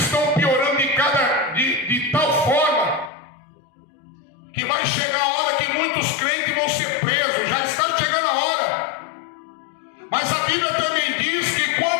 piorando de tal forma que vai chegar a hora que muitos crentes vão ser presos. Já está chegando a hora. Mas a Bíblia também diz que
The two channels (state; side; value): drops out; right; at 3.1 s